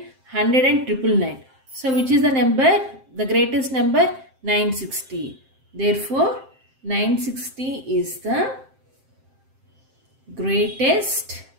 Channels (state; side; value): late; left; 7.6 ms